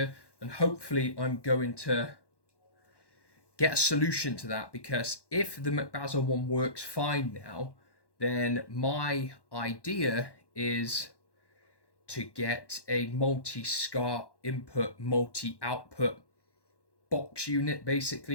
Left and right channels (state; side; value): late; right; 1.1 ms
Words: and hopefully I'm going to get a solution to that, because if the Mcbazel one works fine now, then my idea is to get a multi-SCART input, multi-output box unit. Basically,